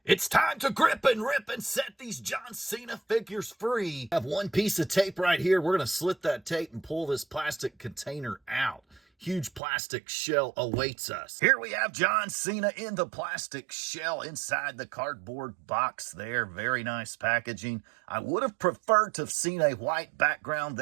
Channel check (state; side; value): drops out; left; at 9.6 s